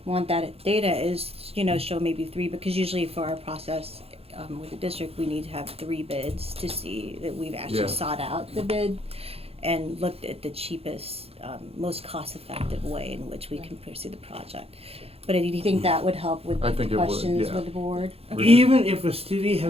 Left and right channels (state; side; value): late; left; 0.29 ms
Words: want that data is, show maybe 3, because usually for our process with the district, we need to have 3 bids to see that we've actually Yeah. sought out the bid and looked at the cheapest, most cost-effective way in which we can pursue the project. But do you think that would help with I think it would, questions yeah. with the board? Even if a city had